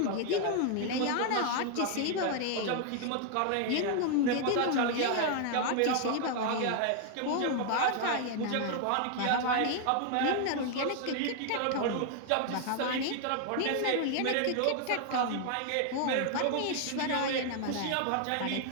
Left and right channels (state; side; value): different; both; correlation 0.00